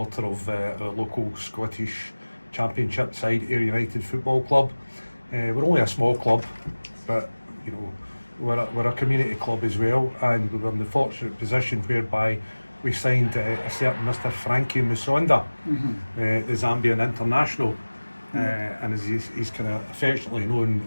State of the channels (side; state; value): both; inverted; correlation -1.00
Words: of our local Scottish Championship side, Ayr United Football Club. We're only a small club, but we're a community club as well, and we were in the fortunate position whereby we signed a certain Mr. Frankie Musonda, the Zambian international, and as he's kind of affectionately known,